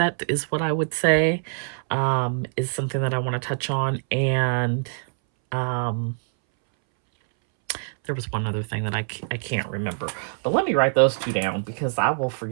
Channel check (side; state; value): left; silent; 62 dB below the other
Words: is what I would say, is something that I want to touch on. And there was one other thing that I can't remember, but let me write those two down because I will